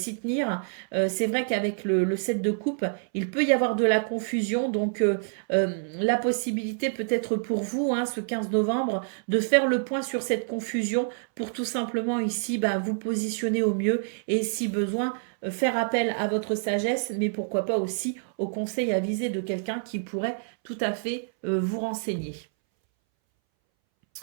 tenir. C'est vrai qu'avec le 7 de coupe, il peut y avoir de la confusion, donc la possibilité peut-être pour vous, hein, ce 15 novembre, de faire le point sur cette confusion pour tout simplement ici bah, vous positionner au mieux et si besoin, faire appel à votre sagesse, mais pourquoi pas aussi au conseil avisé de quelqu'un qui pourrait tout à fait vous renseigner.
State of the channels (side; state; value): left; silent; 60 dB below the other